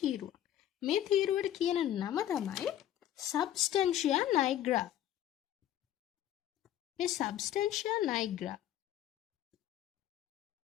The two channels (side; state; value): right; quieter; 11.7 dB